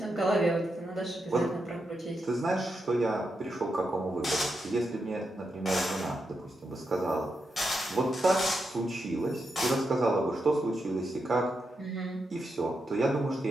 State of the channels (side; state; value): both; normal; correlation 0.85